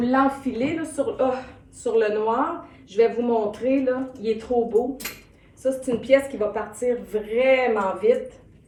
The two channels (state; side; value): identical; both; correlation 1.00